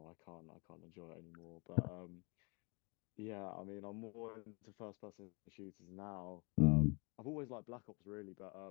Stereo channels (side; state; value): right; quieter; 30.0 dB